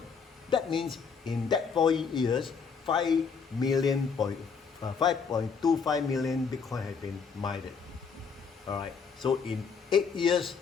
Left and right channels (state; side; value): quieter; right; 5.8 dB